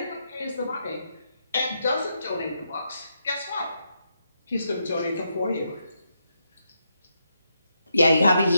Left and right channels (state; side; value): inverted; both; correlation -0.81